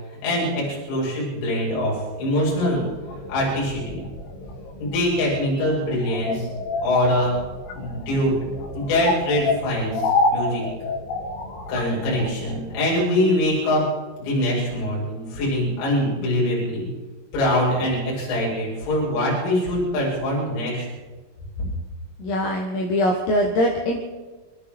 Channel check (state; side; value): late; right; 22 ms